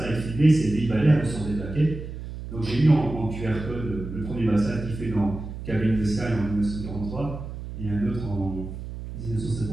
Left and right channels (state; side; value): noise; right; hum, 9 dB below the sound